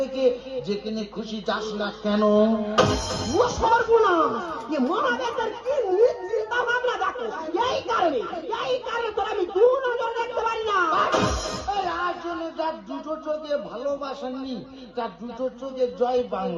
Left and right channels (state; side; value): identical; both; correlation 1.00